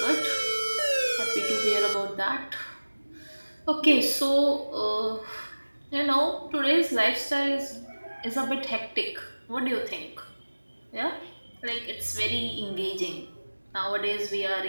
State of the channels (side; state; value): both; inverted; correlation -1.00